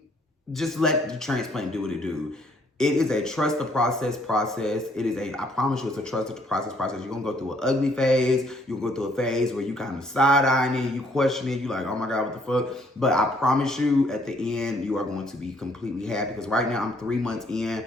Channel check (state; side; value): normal; both; correlation 0.65